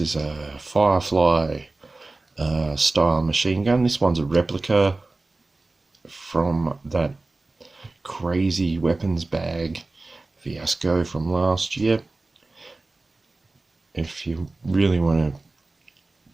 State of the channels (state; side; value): quieter; left; 3.2 dB